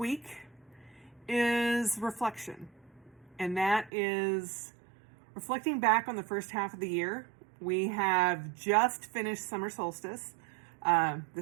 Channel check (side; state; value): left; drops out; at 3.9 s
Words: is reflection, and that is reflecting back on the first half of the year. We have just finished summer solstice.